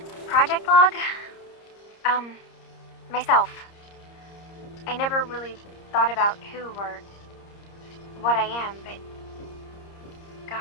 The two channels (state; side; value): late; right; 30 ms